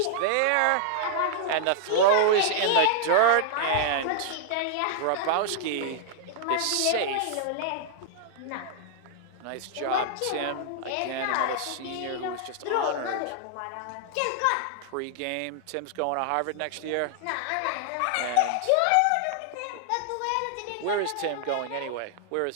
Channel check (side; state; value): both; different; correlation -0.01